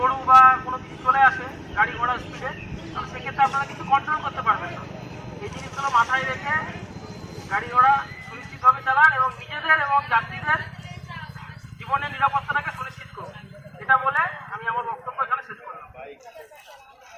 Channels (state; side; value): identical; both; correlation 1.00